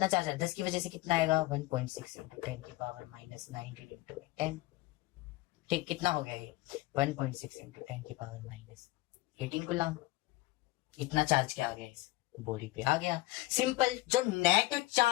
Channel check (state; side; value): quieter; right; 20.0 dB